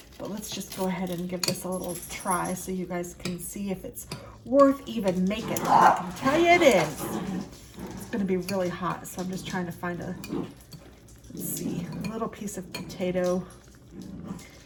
But let's just go ahead and give this a little try so you guys can see if it's worth even making. I can tell you it is. It's gonna be really hot, so I'm just trying to find a, let's see, a little piece of potato.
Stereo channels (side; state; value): both; identical; correlation 1.00